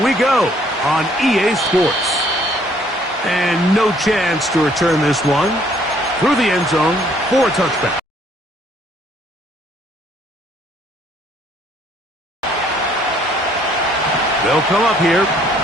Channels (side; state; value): both; normal; correlation 0.63